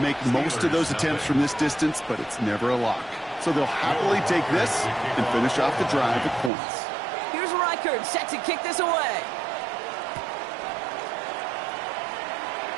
most of those attempts from this distance, but it's never a lock. So they'll happily take this and finish off the drive at points. Here's Reichert set to kick this away.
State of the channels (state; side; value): drops out; left; at 6.5 s